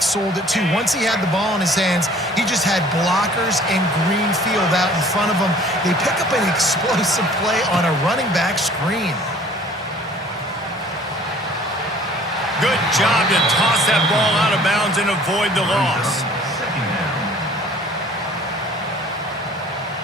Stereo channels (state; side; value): normal; both; correlation 0.52